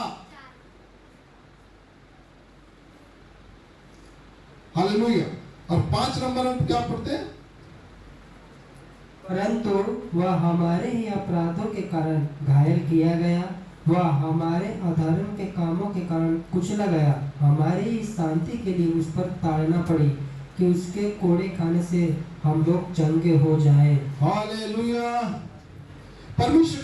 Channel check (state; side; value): identical; both; correlation 1.00